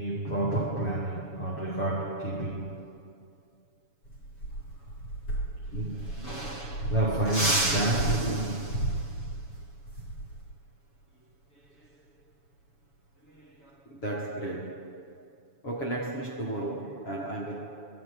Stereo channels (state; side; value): late; right; 7.1 ms